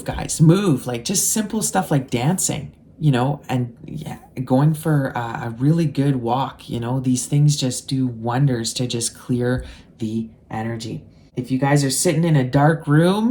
guys, move. Like just simple stuff like dancing, and yeah, going for a really good walk. These things just do wonders to just clear the energy. If you guys are sitting in a dark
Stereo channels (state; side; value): identical; both; correlation 1.00